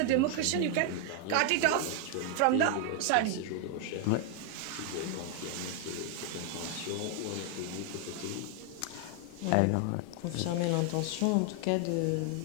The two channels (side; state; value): both; different; correlation 0.00